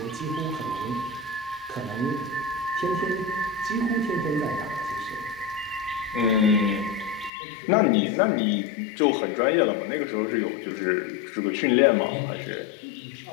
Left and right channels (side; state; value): right; drops out; at 7.3 s